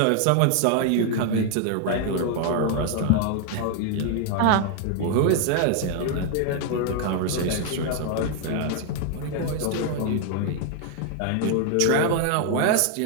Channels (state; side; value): different; both; correlation 0.00